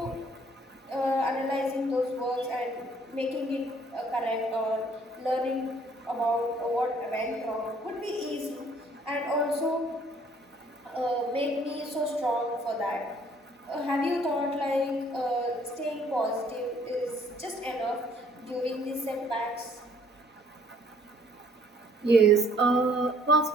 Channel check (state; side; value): normal; both; correlation 0.61